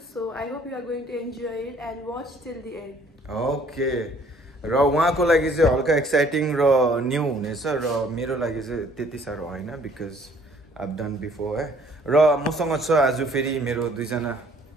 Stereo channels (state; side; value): normal; both; correlation 0.59